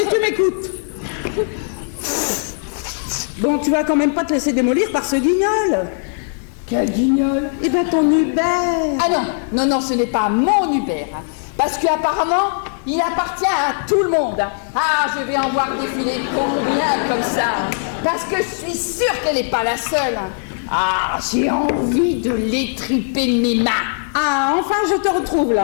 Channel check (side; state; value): right; silent; 67 dB below the other